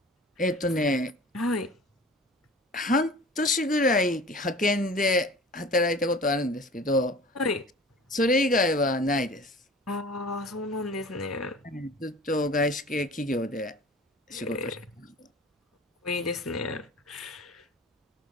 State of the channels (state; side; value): normal; both; correlation 0.42